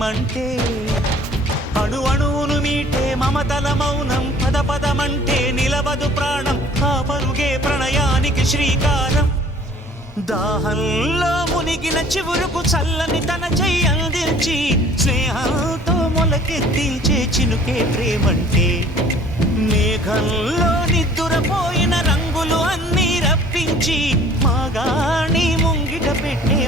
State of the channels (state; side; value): normal; both; correlation 0.52